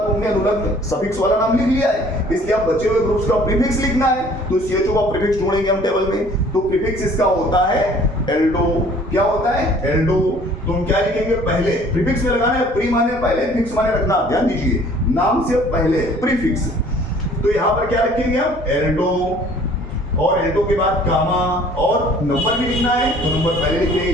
हमने अनुलग्न सफिक्स वाला नाम लिख लिया है, इसलिए अब बचे हुए ग्रुप्स का प्रीफिक्स लिखना है, तो CHO का प्रीफिक्स ढूंढेंगे हम टेबल में। तो प्रीफिक्स इसका होता है एल्डो। क्या होता है? एल्डो। तो हम क्या लिखेंगे? पहले प्रीफिक्स में लगाना है, प्री माने पहले, फिक्स माने रखना। ध्यान दीजिए, नाम से पहले प्रीफिक्स, तो यहां पर क्या रखेंगे हम? एल्डो। और एल्डो के बाद कामा, और नंबर भी लिखना है, तो नंबर पहले लिख देंगे।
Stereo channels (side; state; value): both; normal; correlation 0.54